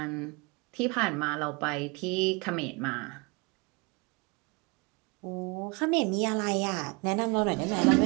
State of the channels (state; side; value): quieter; left; 28.6 dB